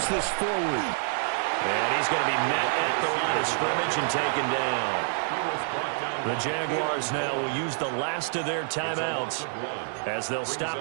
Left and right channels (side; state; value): left; silent; digital silence